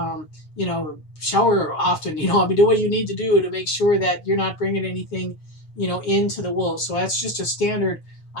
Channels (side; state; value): right; late; 7.7 ms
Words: Shower often. Do what you need to do to make sure that you're not bringing anything, into the wolves. So that's just a standard,